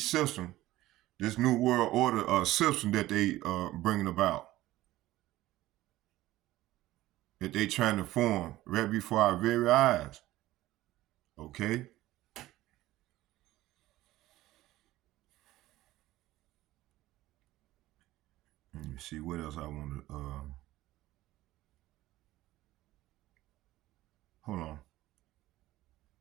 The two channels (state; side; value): quieter; left; 16.2 dB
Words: system, this new world order system that they bringing about, that they trying to form right before our very eyes. Okay. Let me see what else I want to. Hold on.